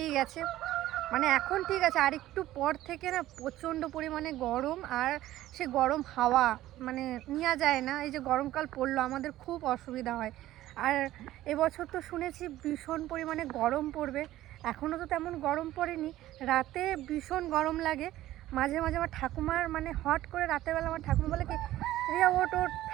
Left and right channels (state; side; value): quieter; left; 14.8 dB